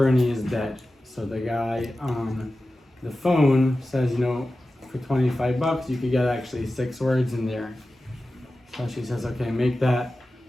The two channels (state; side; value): normal; both; correlation 0.94